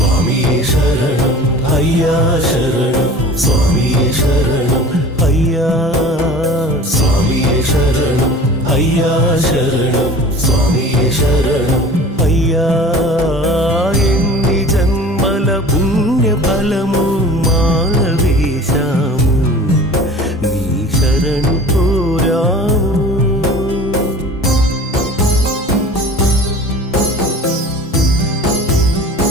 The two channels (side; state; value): both; normal; correlation 0.42